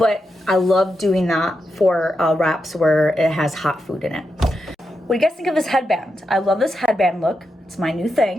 I love doing that for wraps where it has hot food in it. What do you guys think of this headband? I love this headband look. It's my new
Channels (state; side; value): normal; both; correlation 0.86